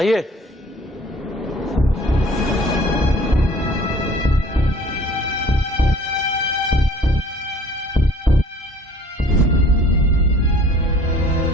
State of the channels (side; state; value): both; normal; correlation 0.51